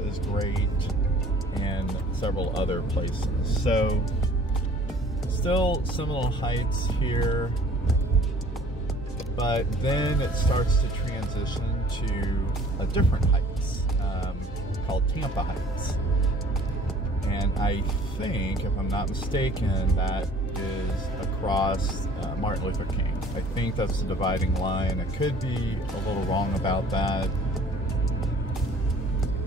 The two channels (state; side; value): normal; both; correlation 0.52